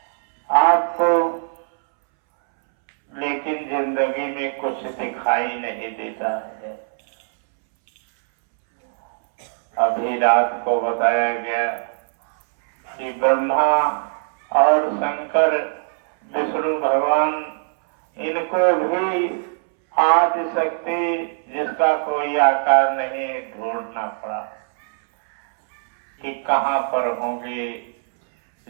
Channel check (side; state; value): left; silent; 65 dB below the other